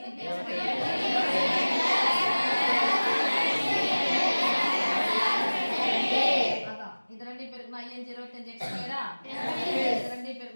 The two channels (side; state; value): both; inverted; correlation -1.00